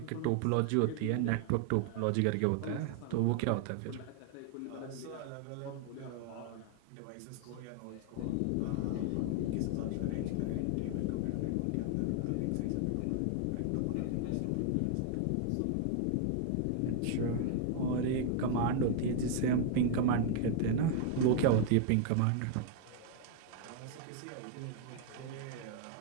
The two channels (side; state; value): both; different; correlation 0.00